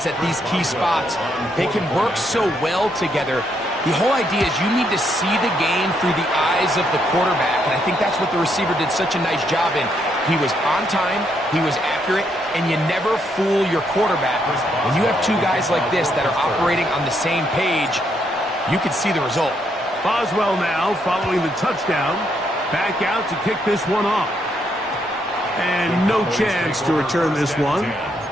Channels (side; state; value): both; normal; correlation 0.75